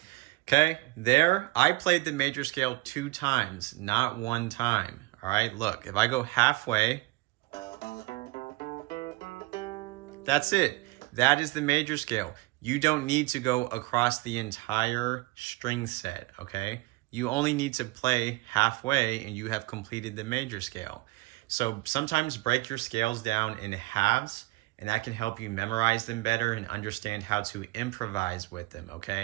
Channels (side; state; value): left; quieter; 21.4 dB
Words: Okay, there, I played the major scale 2 times, not 1 time, all right? Look, if I go halfway, that's it. That is the major scale. You don't need to go across the entire string set, okay? You only need to play halfway and you have completed the major scale. So sometimes break your scales down in halves, and that can help you memorize them better and understand how to improvise with them,